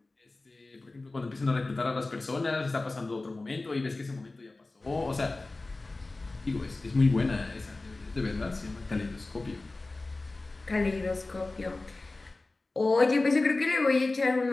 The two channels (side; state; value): right; quieter; 3.2 dB